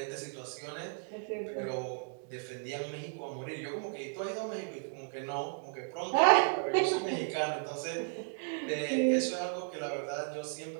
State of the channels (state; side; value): silent; left; 55 dB below the other